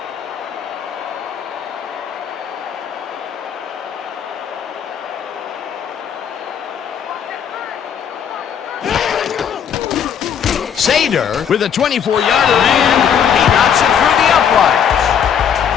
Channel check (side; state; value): right; quieter; 8.1 dB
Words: Sader with a 24-yarder, and he knocks it through the uprights.